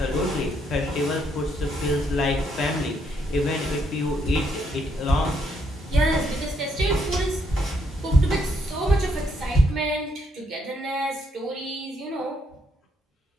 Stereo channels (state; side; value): normal; both; correlation 0.74